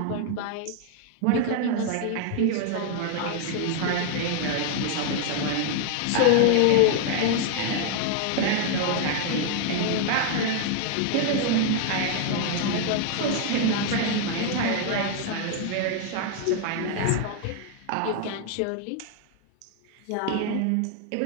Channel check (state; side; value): different; both; correlation 0.00